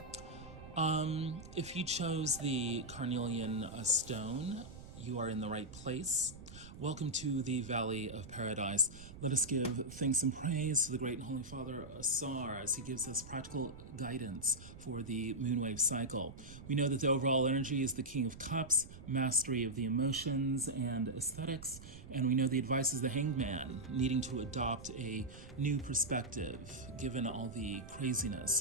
If you chose the Carnelian stone, you are in the right place. Welcome to the Valley of Paradise. Let us give thanks and praise to the great and holy Father Asar as he gives us practical guidance for the moonwave cycle. We know that the overall energy is the King of Cups, mastery of the emotions and aesthetics, and we know the advice is the Hanged Man, needing to adopt a new perspective given all the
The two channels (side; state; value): right; noise; rumble, 15 dB below the sound